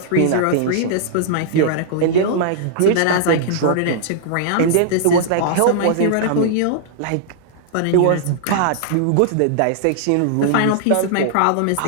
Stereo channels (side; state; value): both; different; correlation -0.01